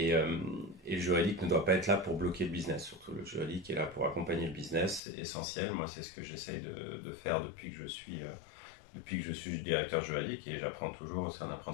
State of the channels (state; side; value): drops out; right; at 5.0 s